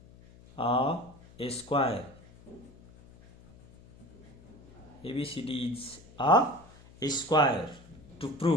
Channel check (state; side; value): noise; left; hum, 23 dB below the sound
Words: a square. ABCD is a square. To